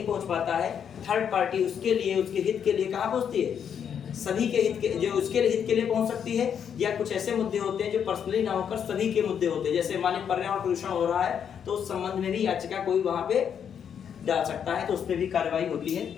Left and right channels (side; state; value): right; quieter; 8.1 dB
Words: पहुंच पाता है, थर्ड पार्टी उसके लिए, उसके हित के लिए कहाँ पहुंचती है? सभी के हित के, जो उसके हित के लिए पहुंच सकती है। या कुछ ऐसे मुद्दे होते हैं जो पर्सनली ना होकर सभी के मुद्दे होते हैं, जैसे मान लीजिए पर्यावरण प्रदूषण हो रहा है, तो उस संबंध में भी याचिका कोई वहां पे डाल सकता है, तो उस पर भी कार्रवाई होती है।